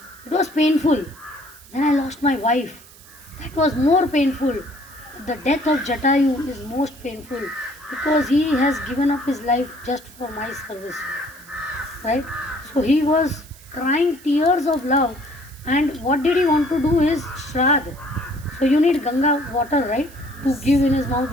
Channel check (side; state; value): right; noise; hiss, 22 dB below the sound